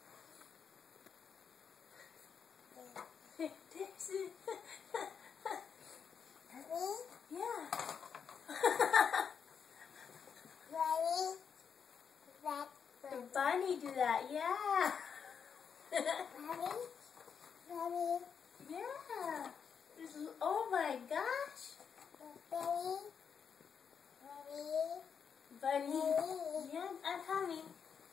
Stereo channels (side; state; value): right; quieter; 6.9 dB